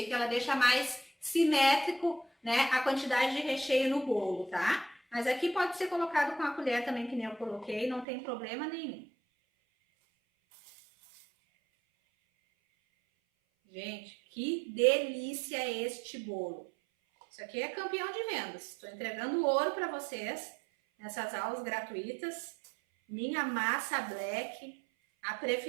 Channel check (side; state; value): left; drops out; at 8.1 s